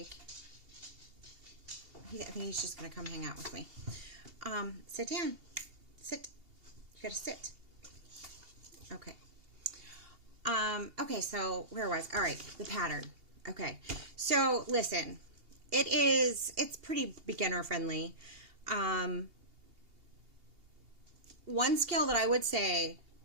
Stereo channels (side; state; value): left; late; 2.8 ms